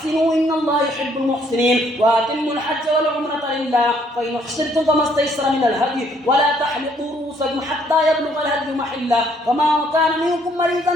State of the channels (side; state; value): both; normal; correlation 0.66